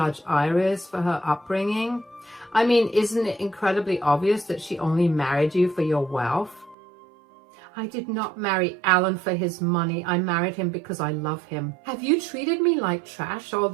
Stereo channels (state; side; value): drops out; left; at 6.8 s